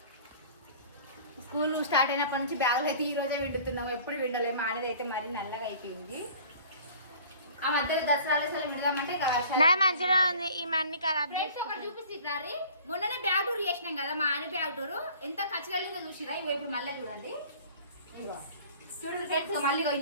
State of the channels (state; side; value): inverted; both; correlation -0.47